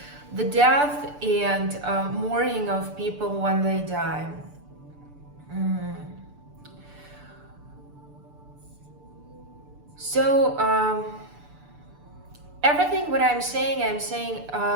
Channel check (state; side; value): late; left; 6.9 ms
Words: The death and mourning of people when they die. So everything what I'm saying